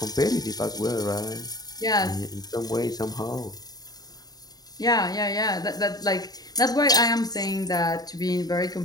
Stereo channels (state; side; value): late; right; 0.19 ms